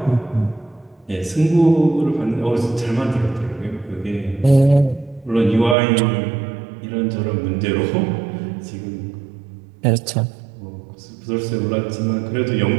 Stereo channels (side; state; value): left; drops out; at 5.8 s